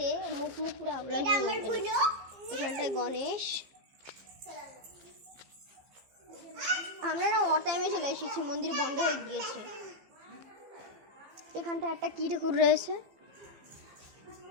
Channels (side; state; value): left; late; 15 ms